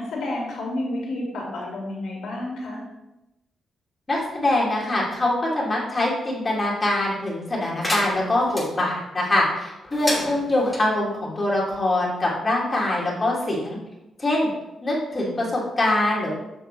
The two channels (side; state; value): both; normal; correlation 0.85